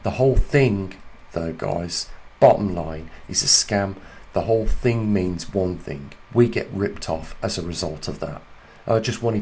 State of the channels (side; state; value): both; identical; correlation 1.00